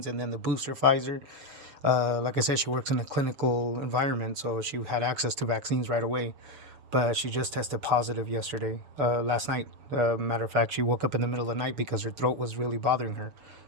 and then the booster Pfizer. Like I said, she works in a clinical environment, so she had access to vaccines right away. But she just tested positive last night. Matter of fact, she woke up in the middle of the night because her throat was really bothering her.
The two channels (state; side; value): late; left; 6.9 ms